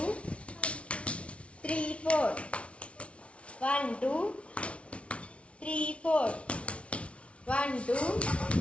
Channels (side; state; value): right; late; 0.061 ms